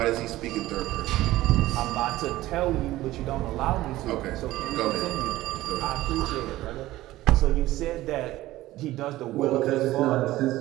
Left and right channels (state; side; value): quieter; left; 16.4 dB